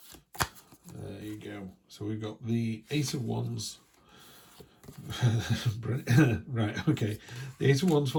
There you go. So we've got the Ace of Wands. Right, okay. The Ace of Wands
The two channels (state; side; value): identical; both; correlation 1.00